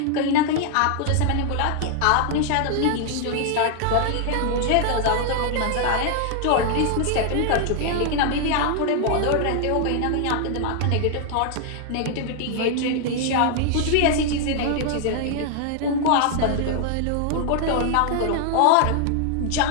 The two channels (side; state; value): both; different; correlation 0.00